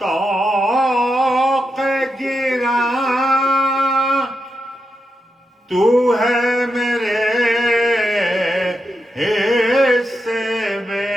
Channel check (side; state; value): both; normal; correlation 0.86